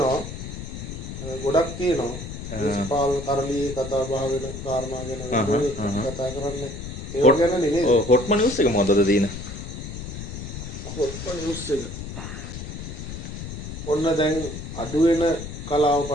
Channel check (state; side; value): noise; left; rumble, 8 dB below the sound